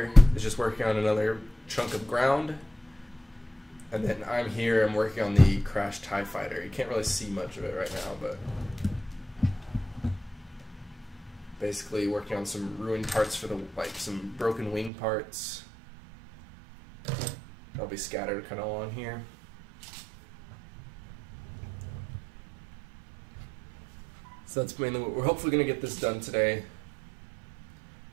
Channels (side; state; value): left; drops out; at 14.9 s